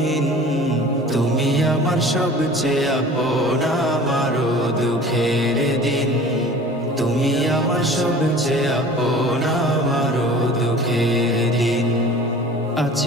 তুমি আমার সবচেয়ে আপন আমার দুঃখের দিন, তুমি আমার সবচেয়ে আপন আমার দুঃখের দিন।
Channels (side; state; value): both; normal; correlation 0.43